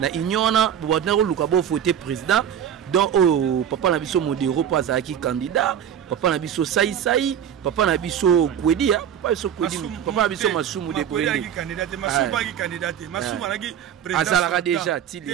union na bobana ko luka bo voter président donc oh papa na biso modero pas azaki candidat papa na biso sai papa na biso kwedi papa biso kwedi papa na biso masumu de brende candidat masumu qui candidat masumu anaki président azalaka déjà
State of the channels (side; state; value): left; quieter; 9.3 dB